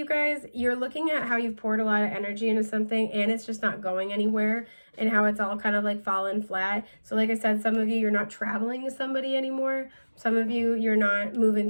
guys, you're looking at how you've poured a lot of energy into something and it's just not going anywhere, and how it's all kind of like fallen flat. So like I said, some of you, you're not traveling to somebody anymore. Some of you, you're not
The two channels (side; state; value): both; inverted; correlation -1.00